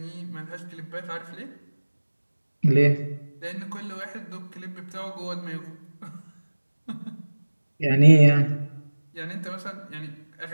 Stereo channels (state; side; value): inverted; both; correlation -1.00